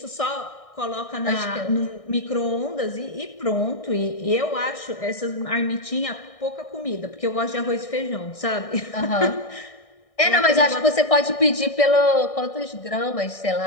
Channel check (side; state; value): right; late; 1.6 ms